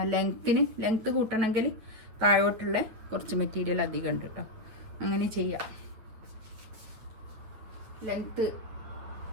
ലെങ്ത്ത് കൂട്ടണമെങ്കിൽ താഴോട്ടുള്ള കുറച്ച് മെറ്റീരിയൽ അധികം ഉണ്ട് കേട്ടോ. അങ്ങനെ ചെയ്യാം. ലെങ്ത്ത്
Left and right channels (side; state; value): left; late; 9.4 ms